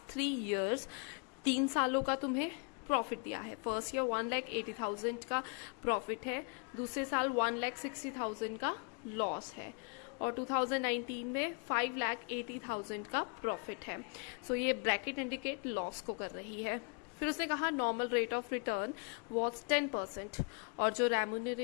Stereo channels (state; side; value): quieter; right; 37.9 dB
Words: 3 years, 3 सालों का तुम्हें प्रॉफिट दिया है। फर्स्ट ईयर 1,80,000 का प्रॉफिट है, दूसरे साल 1,60,000 का लॉस है, और 2019 में 5,80,000 का प्रॉफिट है। ये ब्रैकेट इंडिकेट लॉस को कर रही है। फिर उसने कहा normal rate of return was 10%, और जो